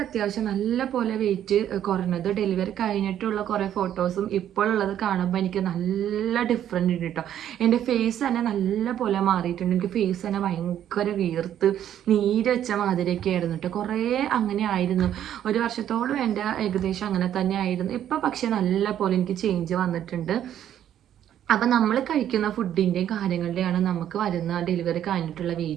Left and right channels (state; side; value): quieter; left; 10.7 dB